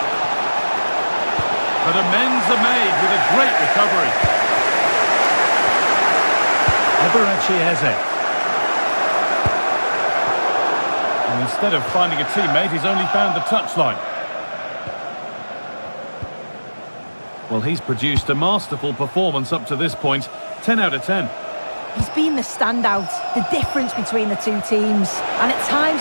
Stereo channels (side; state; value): both; inverted; correlation -1.00